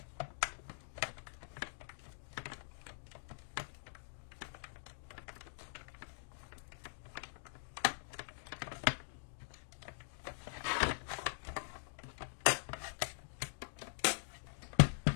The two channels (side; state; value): right; silent; digital silence